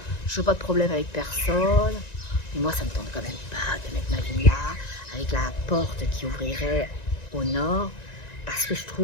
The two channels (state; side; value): late; right; 1.9 ms